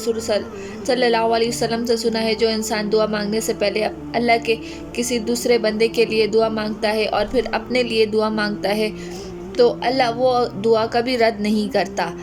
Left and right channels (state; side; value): identical; both; correlation 1.00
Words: सल्लल्लाहु अलैहि वसल्लम से सुना है, जो इंसान दुआ मांगने से पहले अल्लाह के किसी दूसरे बंदे के लिए दुआ मांगता है और फिर अपने लिए दुआ मांगता है तो अल्लाह वो दुआ कभी रद्द नहीं करता।